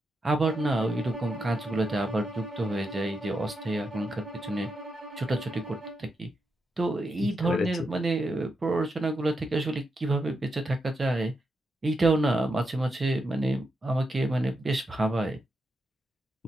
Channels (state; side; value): normal; both; correlation 0.84